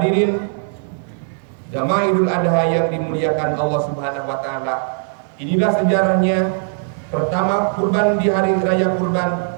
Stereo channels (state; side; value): silent; left; 63 dB below the other